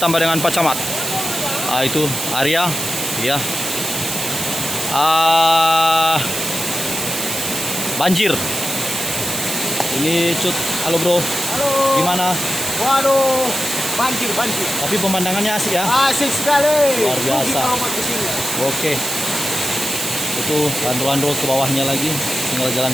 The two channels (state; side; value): noise; right; hiss, 3 dB below the sound